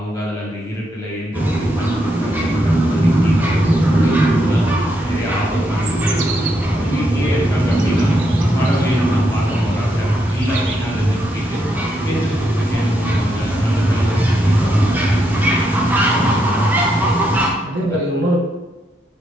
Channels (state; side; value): normal; both; correlation 0.79